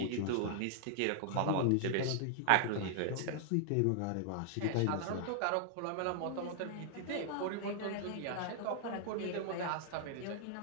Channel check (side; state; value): both; different; correlation -0.01